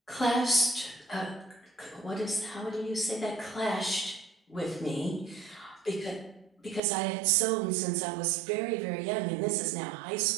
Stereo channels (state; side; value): drops out; left; at 6.8 s